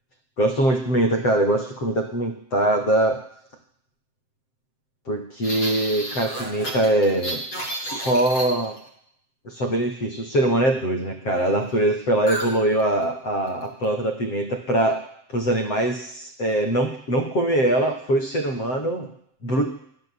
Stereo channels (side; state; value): right; late; 7.7 ms